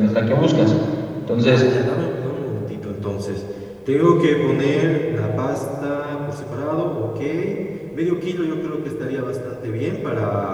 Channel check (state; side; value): identical; both; correlation 1.00